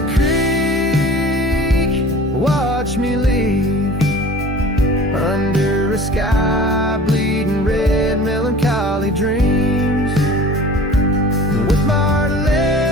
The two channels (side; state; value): both; normal; correlation 0.43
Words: creek watched me leave. Under a sky bleeding red, melancholy dreams. With my heart